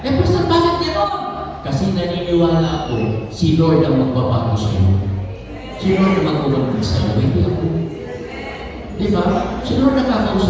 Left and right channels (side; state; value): both; identical; correlation 1.00